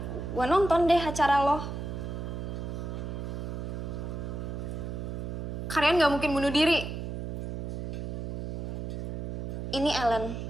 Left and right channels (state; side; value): noise; right; hum, 4 dB below the sound